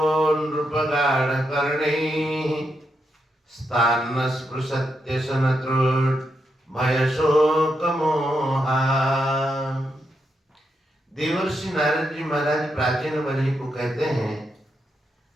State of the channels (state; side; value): normal; both; correlation 0.83